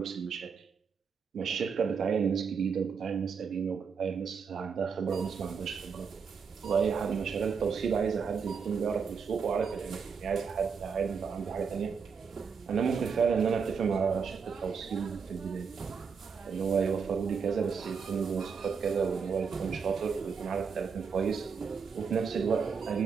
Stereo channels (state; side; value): quieter; left; 6.0 dB